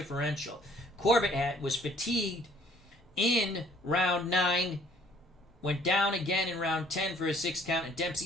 Corbett was fatigued in round 9, went down again in round 10 for a 6 count, and Dempsey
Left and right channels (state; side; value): normal; both; correlation 0.59